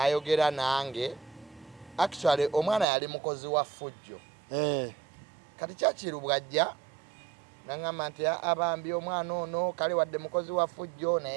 nange. Actually omwana yali mukozi wa ffujjo kati Churchill bw'ajja nangamba nti abambi omwana ono kale wadde mukozi wa ffujjo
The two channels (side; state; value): left; drops out; at 2.9 s